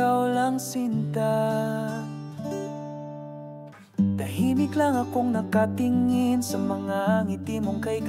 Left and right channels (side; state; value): both; identical; correlation 1.00